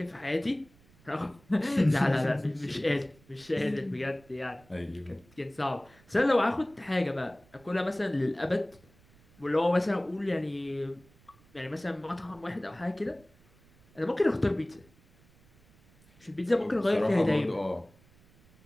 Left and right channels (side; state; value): right; noise; rumble, 29 dB below the sound